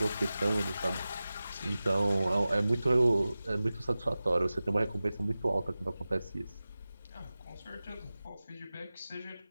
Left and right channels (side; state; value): both; inverted; correlation -0.96